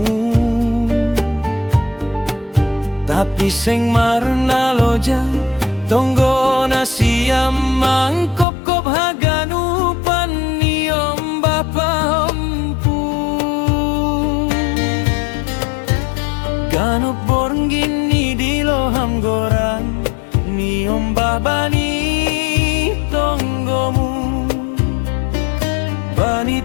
tapi seng marna loja tonggo na siam mangkop-kop haganupan niom bapa empu ganup borngin ni diloham gorang niom babani tonggomu bani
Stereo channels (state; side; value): drops out; right; at 8.5 s